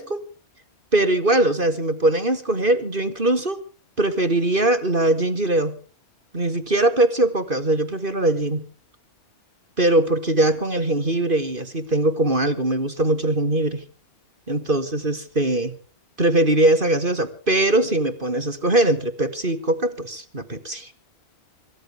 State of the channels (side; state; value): left; late; 2.5 ms